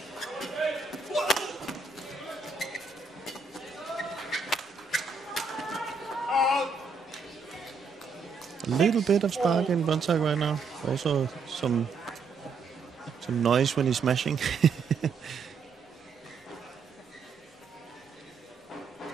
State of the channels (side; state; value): left; quieter; 4.7 dB